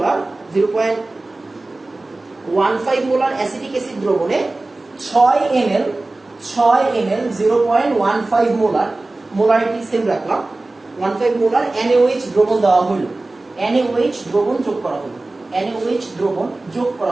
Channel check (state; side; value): quieter; left; 3.0 dB